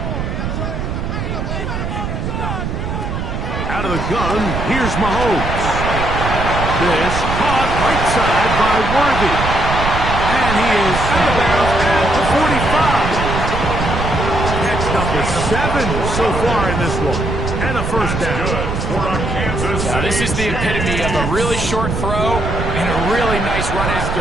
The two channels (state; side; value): noise; right; rumble, 3 dB below the sound